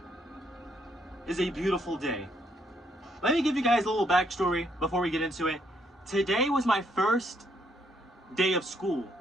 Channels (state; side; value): normal; both; correlation 0.72